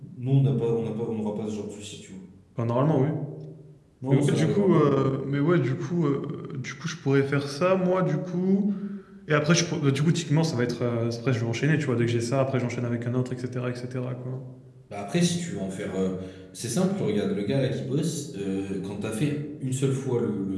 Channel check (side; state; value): both; identical; correlation 1.00